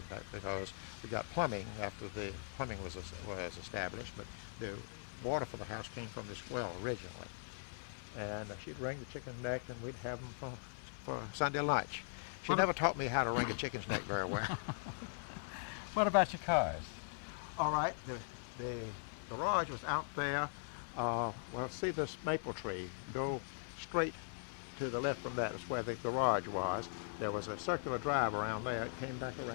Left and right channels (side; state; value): right; silent; 51 dB below the other